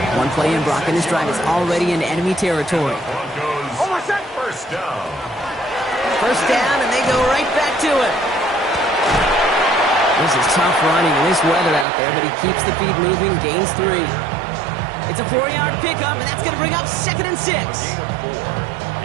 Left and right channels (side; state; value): left; drops out; at 11.9 s